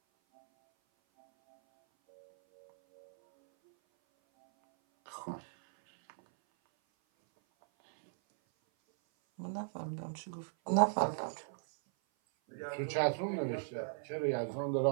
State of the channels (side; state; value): left; silent; 53 dB below the other